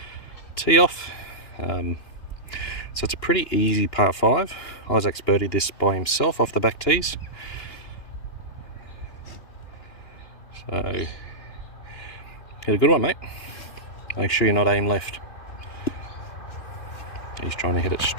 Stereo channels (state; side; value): late; right; 2.9 ms